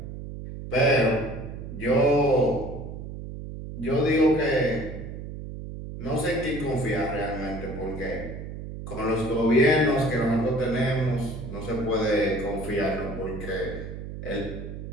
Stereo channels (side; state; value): right; noise; hum, 9 dB below the sound